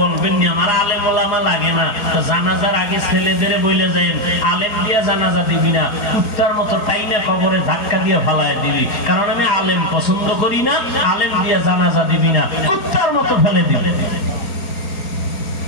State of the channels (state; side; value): late; right; 4.3 ms